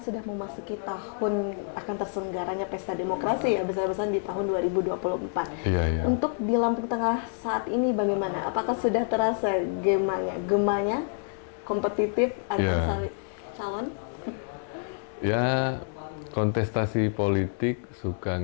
memasuki tahun akan terselenggaranya Pesta Demokrasi ya, besar-besaran di tahun 2024. Iya, iya. Untuk di Lampung Tengah saat ini bagaimana? Apakah sudah terasa gemanya kompetitif antara calon? Ya, kontestasi politik suka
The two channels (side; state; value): right; silent; digital silence